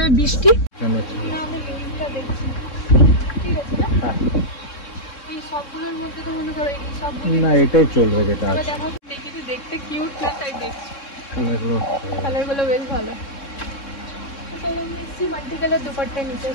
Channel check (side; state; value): right; late; 3.6 ms